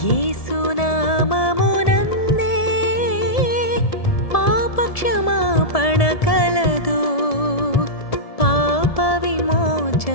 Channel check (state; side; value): late; right; 1.7 ms